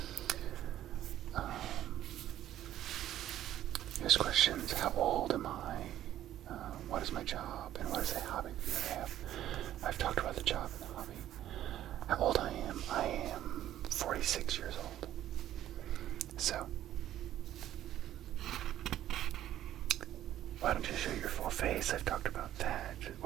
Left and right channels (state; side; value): quieter; left; 12.4 dB